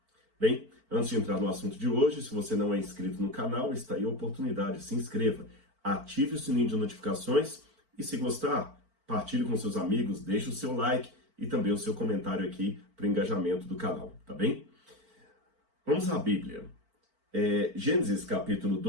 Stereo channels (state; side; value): late; left; 4.5 ms